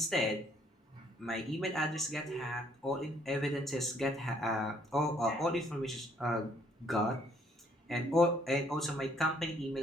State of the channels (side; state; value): both; normal; correlation 0.65